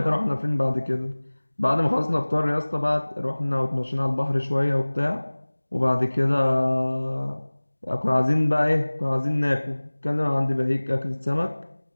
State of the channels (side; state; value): both; inverted; correlation -1.00